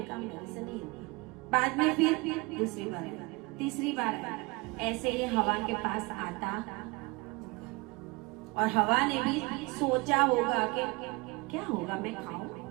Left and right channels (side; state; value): left; quieter; 25.5 dB